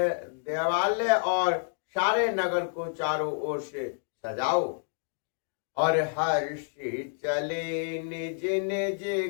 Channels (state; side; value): silent; right; digital silence